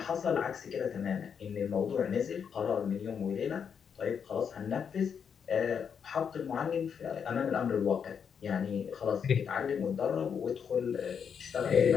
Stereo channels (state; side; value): quieter; right; 7.1 dB